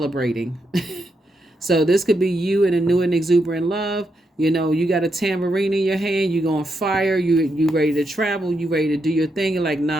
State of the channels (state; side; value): normal; both; correlation 0.82